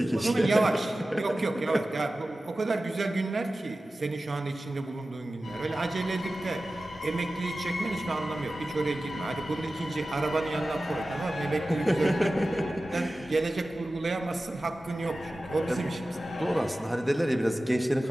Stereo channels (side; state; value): both; normal; correlation 0.95